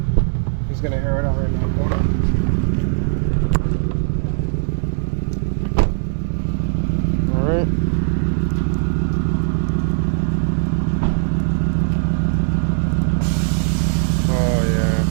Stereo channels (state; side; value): silent; left; 66 dB below the other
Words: He's gonna air it out right now. Hold on. All right.